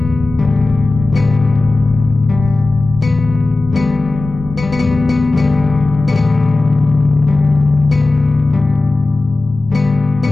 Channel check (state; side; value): quieter; right; 3.2 dB